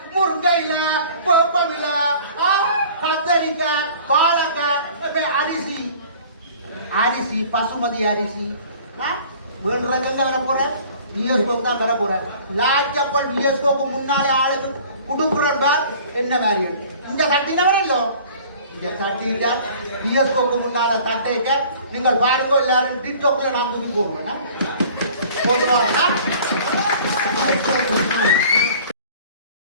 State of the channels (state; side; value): inverted; both; correlation -0.48